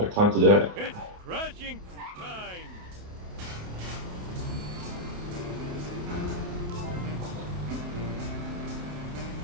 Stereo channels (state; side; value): late; left; 28 ms